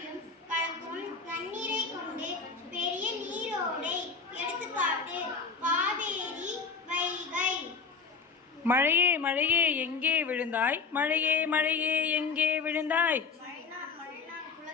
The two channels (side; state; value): right; quieter; 5.0 dB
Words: கலக்கும் நன்னீரை கொண்டு பெரிய நீரோடை. எடுத்துக்காட்டு காவேரி, வைகை. மழையே மழையே எங்கே விழுந்தாய்? மழையே மழையே எங்கே விழுந்தாய்? மழைநாள்